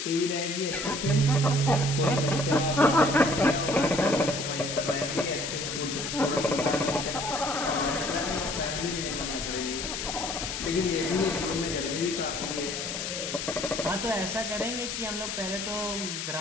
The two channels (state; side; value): noise; left; hiss, 4 dB below the sound